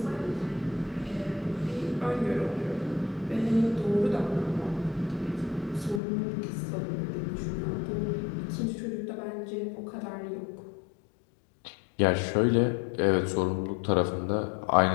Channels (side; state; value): right; drops out; at 6.0 s